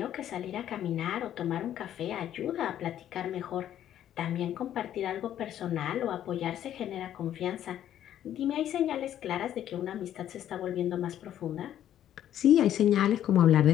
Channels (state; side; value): quieter; right; 11.2 dB